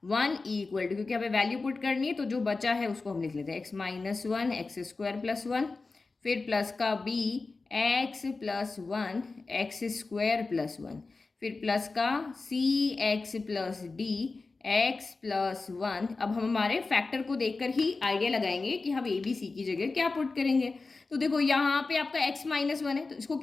1 इक्वल टू, क्योंकि हमें वैल्यू पुट करनी है तो जो बचा है उसको हम लिख लेते हैं, x minus 1 x square plus 1, फिर प्लस का b x plus 1 x square plus 1, फिर प्लस का c x plus d x plus one. अब हम हमारे फैक्टर को देखकर ही आइडिया लगाएंगे कि हम ए बी सी की जगह क्या पुट करेंगे। तो देखो यहाँ पे आपका x माइनस वन है, तो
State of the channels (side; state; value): right; quieter; 3.8 dB